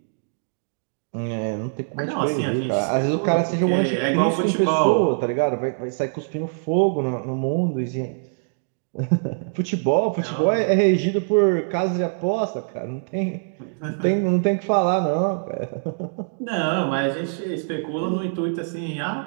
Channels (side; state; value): left; silent; digital silence